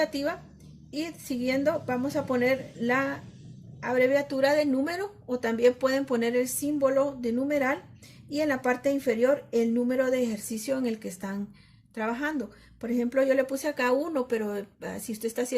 y siguiendo vamos a poner la abreviatura de número, o también pueden poner el símbolo de numeral, y en la parte inferior el número de ejercicio en el que están trabajando. Por ejemplo, yo le puse acá 1, pero si usted está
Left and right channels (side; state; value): both; identical; correlation 1.00